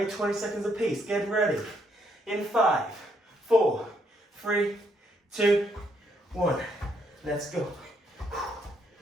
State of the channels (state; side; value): normal; both; correlation 0.73